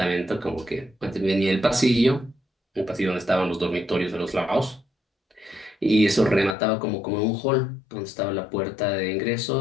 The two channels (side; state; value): right; drops out; at 6.6 s